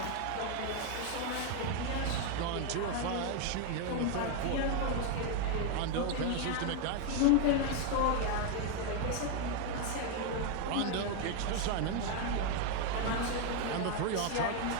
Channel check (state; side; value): different; both; correlation 0.01